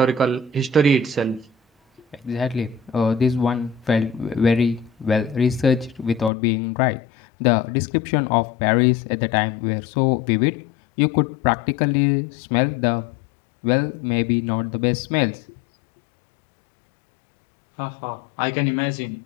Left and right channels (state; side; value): drops out; right; at 6.3 s